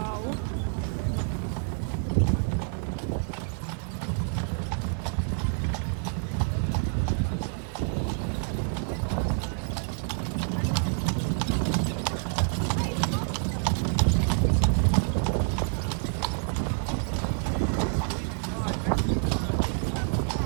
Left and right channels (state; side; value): silent; left; 58 dB below the other